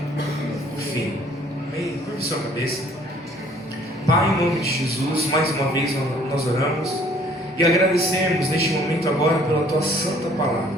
o fim. Amém? Curve sua cabeça. Pai, em nome de Jesus, mais uma vez nós oramos e agradecemos neste momento agora pela Tua santa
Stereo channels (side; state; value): both; normal; correlation 0.58